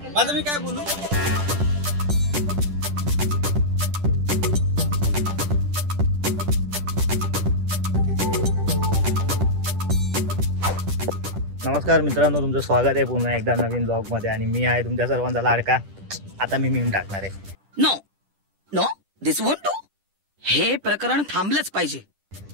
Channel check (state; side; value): late; left; 10 ms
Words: माझं मी काय बोलू? नमस्कार मित्रांनो, तुमचं स्वागत आहे पुन्हा एकदा नवीन ब्लॉग मध्ये. आणि मी आहे तुमच्या सर्वांचा लाडका. आता मी मीम टाकणार आहे. No no this won't do. हे प्रकरण थांबलंच पाहिजे.